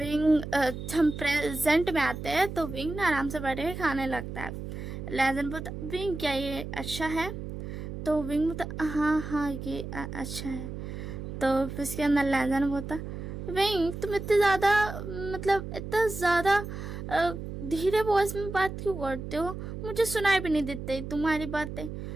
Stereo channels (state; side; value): noise; right; hum, 8 dB below the sound